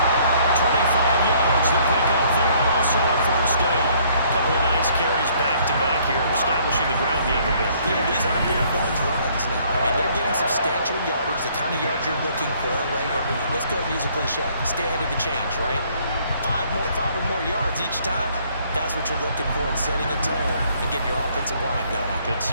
25 yards to pick up there, and also a first down. A couple of nice carries back-to-back here, establishing the ground game a bit. Yeah, these aren't bare bones runs now. I mean, they're getting substantial yardage, the kind of yards you're looking for, right? Let's go use a cliche. Stay ahead of the change, right? 5 or more yards each time. That's what you're looking for in setting a tone and getting your offensive line going. Good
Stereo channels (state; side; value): inverted; both; correlation -0.63